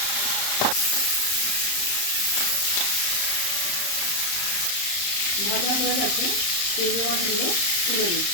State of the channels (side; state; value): right; late; 34 ms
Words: ভাজা হয়ে গেছে, চিংড়ি মাছগুলো তুলে